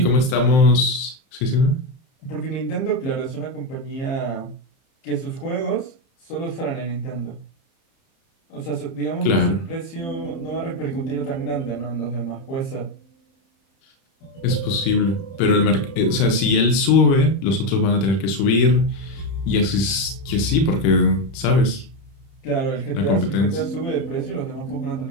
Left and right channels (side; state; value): right; late; 31 ms